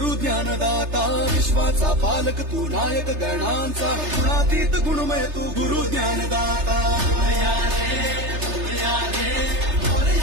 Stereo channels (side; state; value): left; late; 3.3 ms